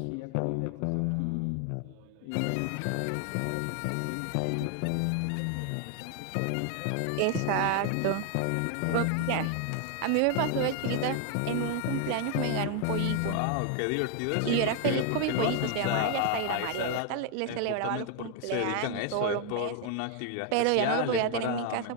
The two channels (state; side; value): different; both; correlation 0.00